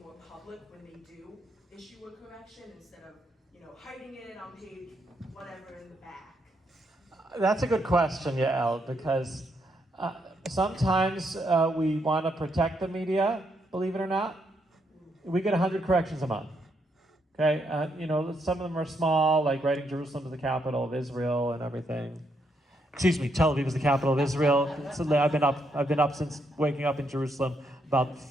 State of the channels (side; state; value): both; normal; correlation 0.77